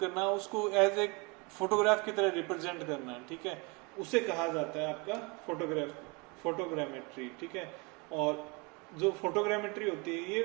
उसको एज ए फोटोग्राफ की तरह रिप्रेजेंट करना। ठीक है, उसे कहा जाता है आपका फोटोग्रामेट्री। ठीक है, और जो फोटोग्रामेट्री होती है,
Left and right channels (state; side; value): quieter; left; 29.4 dB